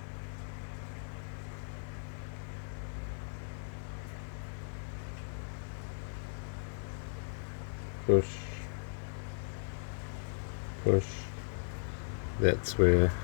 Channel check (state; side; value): silent; right; digital silence